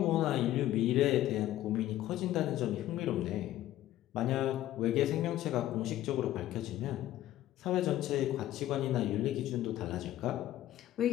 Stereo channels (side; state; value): right; quieter; 13.8 dB